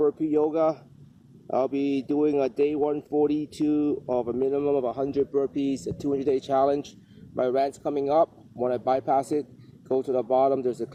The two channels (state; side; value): identical; both; correlation 1.00